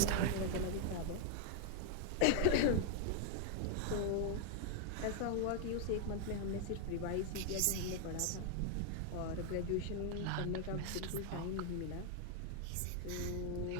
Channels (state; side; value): different; both; correlation 0.00